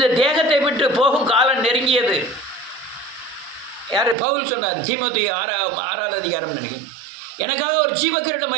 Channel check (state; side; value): drops out; left; at 4.2 s